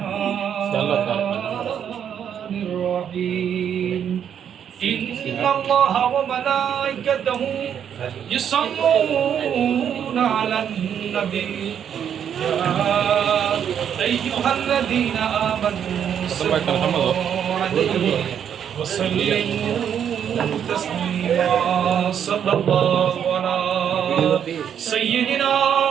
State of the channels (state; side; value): quieter; left; 8.7 dB